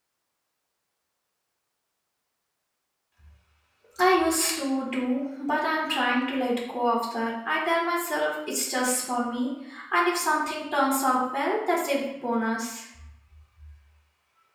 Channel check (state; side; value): identical; both; correlation 1.00